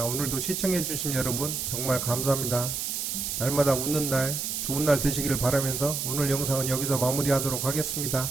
오늘도 시청해주신 여러분 정말 감사합니다. 날마다 웃는 날 좋은 날 되시기를 바라면서 오늘 영상은 여기서 마무리하도록 하겠습니다.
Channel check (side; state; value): right; noise; hiss, 2 dB below the sound